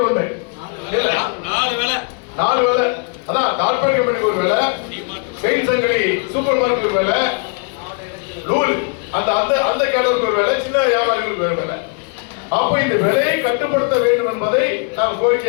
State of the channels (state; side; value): quieter; right; 37.4 dB